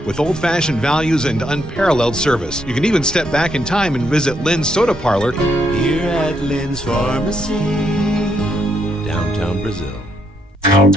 with old-fashioned values and unparalleled service. You can even step back in time and visit Lynn's Soda Parlor here at Lynn's Pharmacy, downtown Brazil.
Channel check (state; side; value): normal; both; correlation 0.75